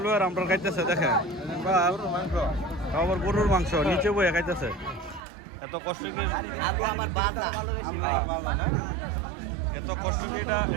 আর আমরা খাইতেছে দেখেন। আবার গরুর মাংস নিচে বয়ে খাইতেছে। এত কষ্ট কি এত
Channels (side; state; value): left; drops out; at 5.2 s